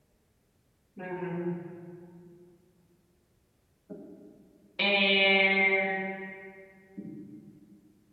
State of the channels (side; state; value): both; identical; correlation 1.00